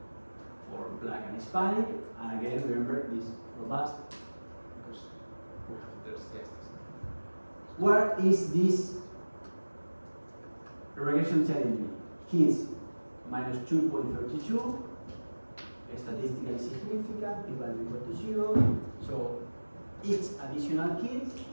for black and Hispanic. And again, remember this robust because we have those guests. What is this regression telling me? Kids minus 2.32, statistically significant, p-value equal to 0. So each additional kid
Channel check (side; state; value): both; inverted; correlation -1.00